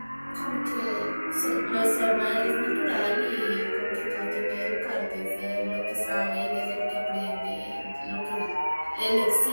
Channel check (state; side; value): inverted; both; correlation -1.00